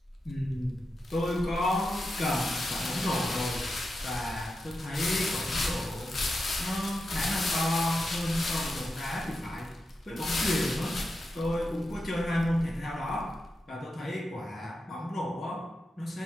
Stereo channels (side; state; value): both; normal; correlation 0.88